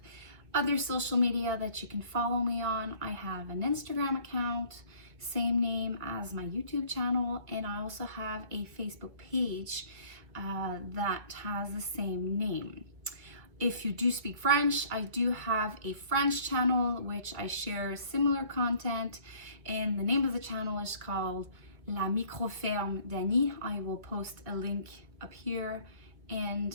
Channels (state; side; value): late; left; 2.2 ms